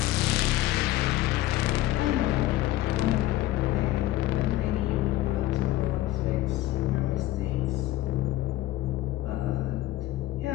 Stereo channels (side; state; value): right; quieter; 15.4 dB